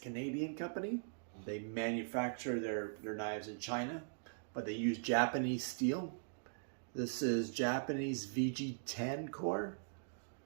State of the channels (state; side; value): silent; left; digital silence